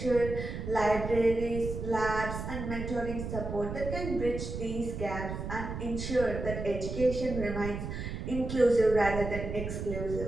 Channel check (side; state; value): right; noise; rumble, 6 dB below the sound